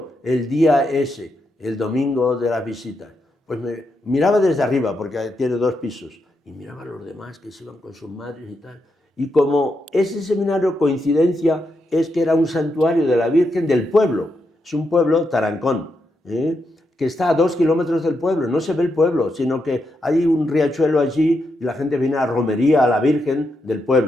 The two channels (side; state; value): both; normal; correlation 0.83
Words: el día ese, el domingo de las visitas? Pues me miraba desde arriba, porque tiene 2 pisos, y miraba a los demás que se iban con sus madres y tal. Y como ese seminario, coincidencia, es que era un santuario de la Virgen del pueblo. Es un pueblo, Tarancón, que está a 2 kilómetros del pueblo. No se ve el pueblo, sino que hay un riachuelo allí y la gente viene a romería a la Virgen del